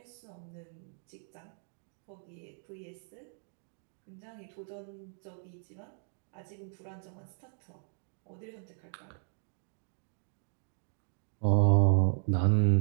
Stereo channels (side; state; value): left; silent; digital silence